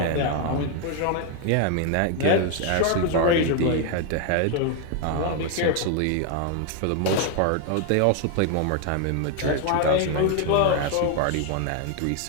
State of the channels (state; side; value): different; both; correlation 0.00